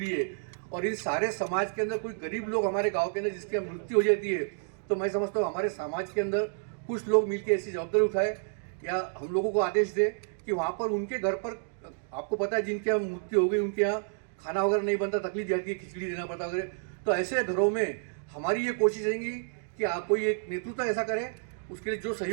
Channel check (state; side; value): silent; left; digital silence